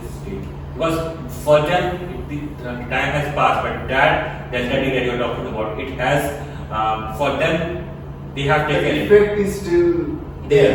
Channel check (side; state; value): both; identical; correlation 1.00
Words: Because for them, the time has passed, but that delta D that you are talking about, it has, for them, they have The taken it. effect is still